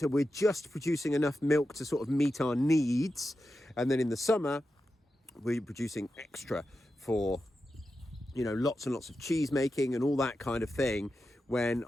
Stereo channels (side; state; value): both; normal; correlation 0.90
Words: we're just producing enough milk to sort of meet our needs, and then in the summer we're producing extra for, you know, lots and lots of cheese making and all that kind of thing, when